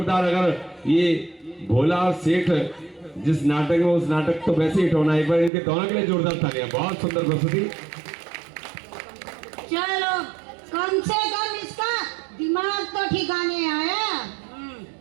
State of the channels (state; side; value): drops out; left; at 5.5 s